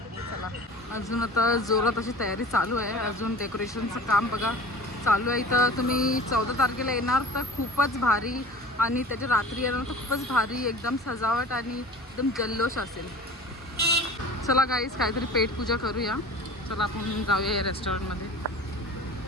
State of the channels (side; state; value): both; normal; correlation 0.40